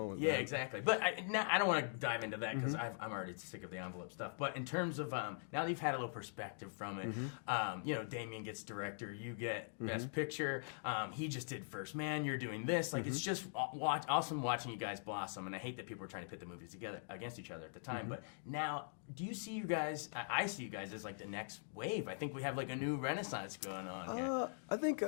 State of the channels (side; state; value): right; silent; digital silence